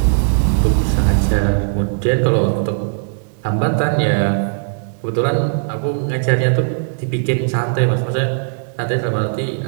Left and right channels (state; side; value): silent; left; digital silence